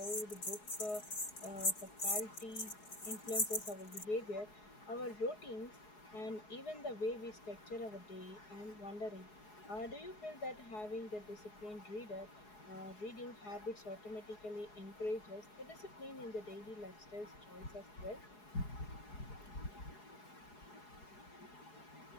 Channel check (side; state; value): right; late; 4.8 ms